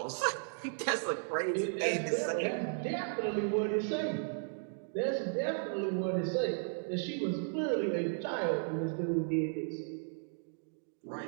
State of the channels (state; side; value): silent; left; digital silence